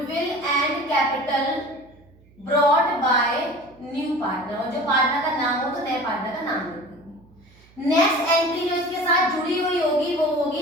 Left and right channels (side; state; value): right; noise; hum, 28 dB below the sound